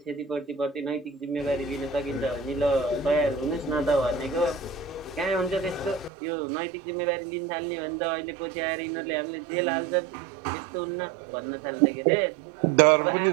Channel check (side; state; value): left; drops out; at 6.1 s